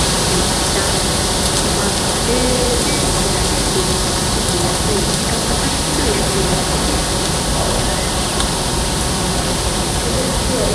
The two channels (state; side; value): identical; both; correlation 1.00